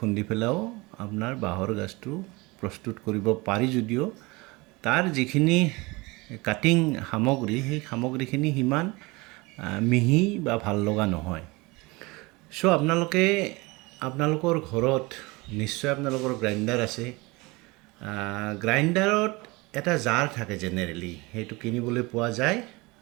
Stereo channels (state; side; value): quieter; left; 24.2 dB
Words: পেলাইও আপোনাৰ বাঁহৰ গাজটো প্ৰস্তুত কৰিব পাৰি, যদিও তাৰ যিখিনি কাটিং সামগ্ৰী সেই সামগ্ৰীখিনি সিমান মিহি বা ভাল লগা নহয়। আপোনালোকৰ ঘৰত নিশ্চয় আপোনালোকৰ গ্ৰাইণ্ডাৰ আছে। গ্ৰাইণ্ডাৰত এটা জাৰ থাকে জেনেৰেলি, সেইটো কিনিবলৈ পোৱা যায়